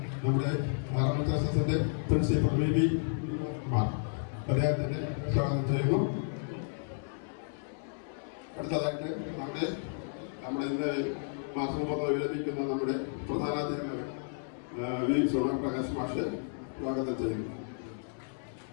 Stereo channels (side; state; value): right; silent; 55 dB below the other